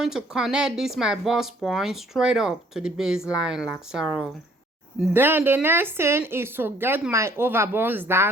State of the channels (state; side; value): normal; both; correlation 0.60